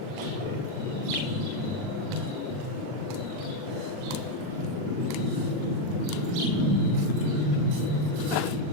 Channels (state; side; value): late; left; 39 ms